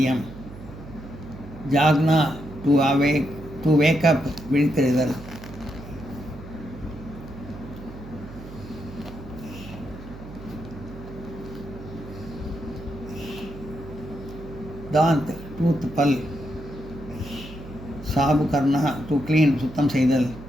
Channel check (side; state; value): right; noise; hum, 14 dB below the sound